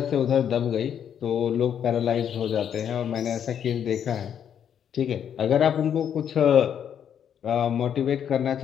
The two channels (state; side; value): quieter; right; 8.8 dB